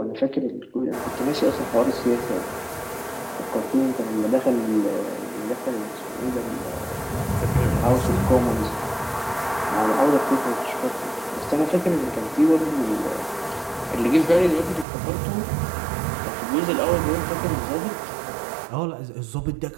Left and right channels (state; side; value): drops out; left; at 14.9 s